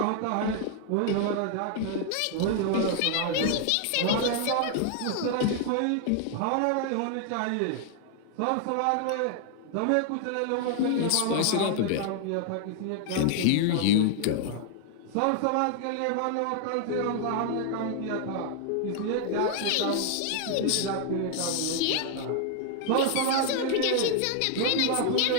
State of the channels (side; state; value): both; different; correlation 0.00